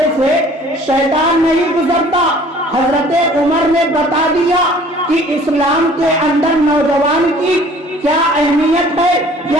سے شیطان نہیں گزرتا۔ حضرت عمر نے بتا دیا کہ اسلام کے اندر نوجوان کی کیا اہمیت ہے،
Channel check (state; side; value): normal; both; correlation 0.52